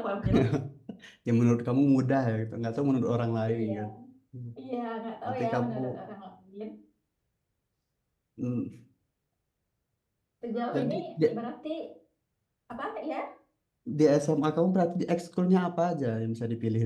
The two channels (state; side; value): identical; both; correlation 1.00